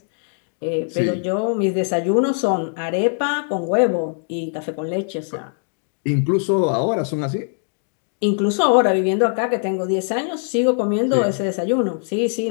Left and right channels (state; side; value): silent; right; 60 dB below the other